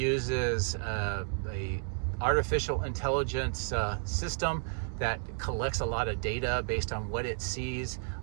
a artificial intelligence system that collects a lot of data based on what it sees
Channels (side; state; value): left; silent; 56 dB below the other